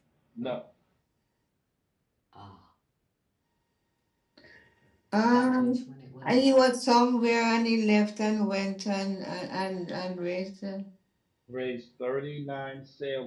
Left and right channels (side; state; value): both; identical; correlation 1.00